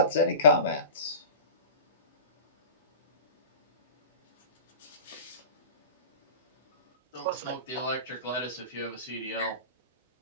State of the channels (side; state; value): both; inverted; correlation -0.35